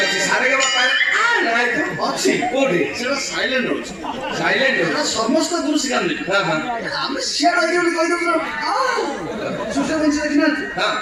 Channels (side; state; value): both; identical; correlation 1.00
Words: ଅଛି ସାରେ ଗା ବାପା ନାଇଁ ତ ଅଛି କୋଉଠି ସେଟା ସାଇଲେଣ୍ଟ ରହୁଛି ସାଇଲେଣ୍ଟ ସେଟା ସମସ୍ତ ଗୁରୁ ଶିଖାନ୍ତି ହଁ ହଁ ଆମେ ସିଆଡ ଆଇକି ବୋଲି କହିଦେବୁ ସୂର୍ଯ୍ୟ ବଂଶୀ ଦେଖିନାହାନ୍ତି ହଁ